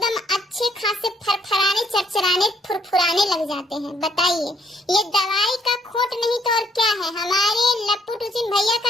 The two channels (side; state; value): both; normal; correlation 0.68